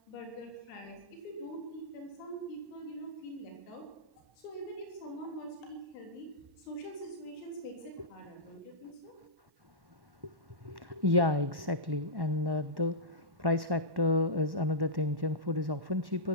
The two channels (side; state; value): left; late; 1.1 ms